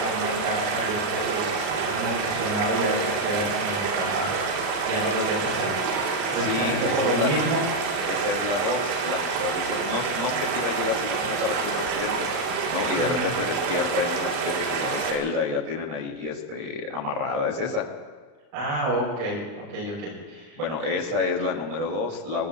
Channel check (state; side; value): late; left; 40 ms